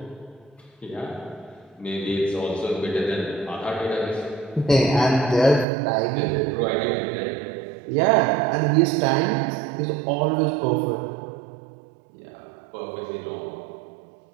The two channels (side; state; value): left; drops out; at 5.7 s